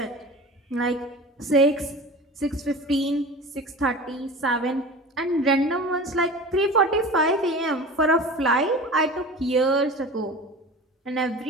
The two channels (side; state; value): both; normal; correlation 0.36